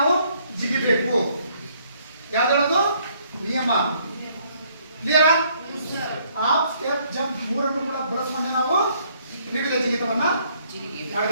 ಜಿಗಿಬೇಕು. ಯಾವ್ದು ನಿಯಮ? ಕ್ಲಿಯರಾ? ಹಾಫ್ ಸ್ಟೆಪ್ ಜಂಪ್ ಮೂರನ್ನು ಕೂಡ ಬಳಸಿಕೊಂಡೆ ನಾವು ತ್ರಿವಿಧ ಜಿಗಿತವನ್ನ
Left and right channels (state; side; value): inverted; both; correlation -0.66